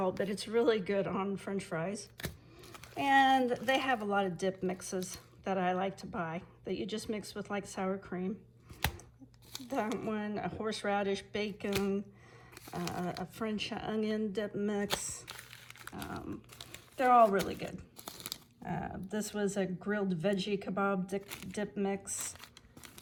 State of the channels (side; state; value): both; identical; correlation 1.00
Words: but it's really good on French fries. And they have a lot of dip mixes. that I like to buy that you just mix with like sour cream. That one, a horseradish, bacon, a French onion dip mix. They're all really good. This was a grilled veggie kebab dip mix,